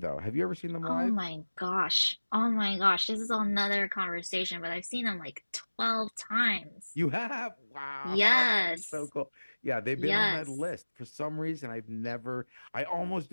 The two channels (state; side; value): inverted; both; correlation -1.00